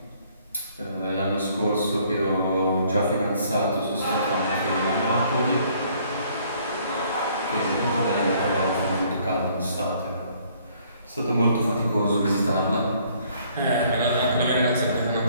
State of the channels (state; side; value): inverted; both; correlation -0.62